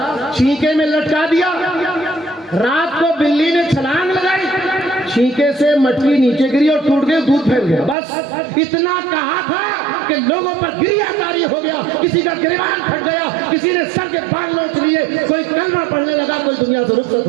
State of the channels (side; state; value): left; drops out; at 8.0 s